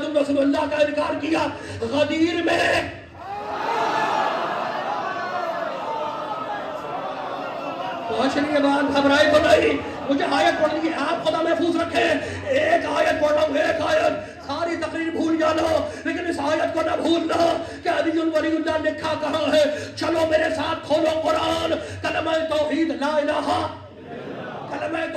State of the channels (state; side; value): identical; both; correlation 1.00